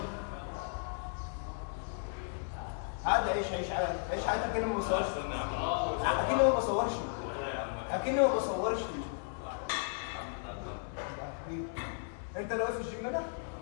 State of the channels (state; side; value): silent; right; digital silence